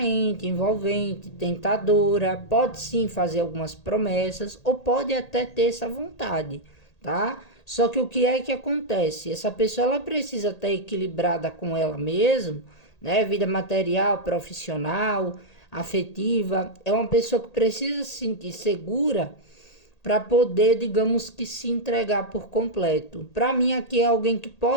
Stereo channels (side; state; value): right; late; 1.8 ms